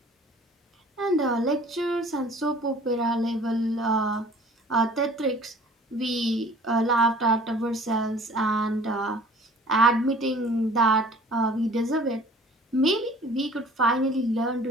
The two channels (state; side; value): normal; both; correlation 0.49